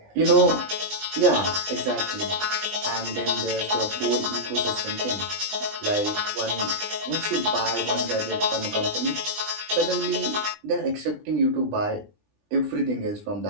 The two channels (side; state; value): left; late; 20 ms